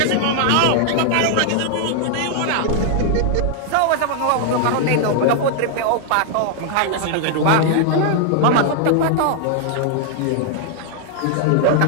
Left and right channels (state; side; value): different; both; correlation 0.00